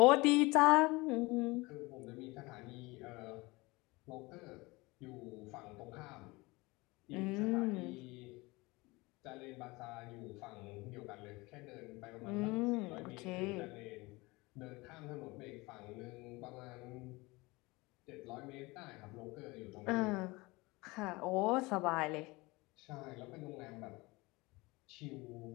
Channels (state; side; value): quieter; right; 23.3 dB